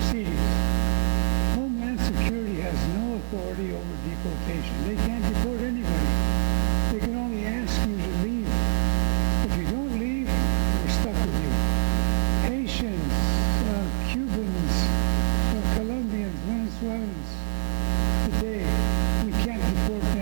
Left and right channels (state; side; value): silent; left; digital silence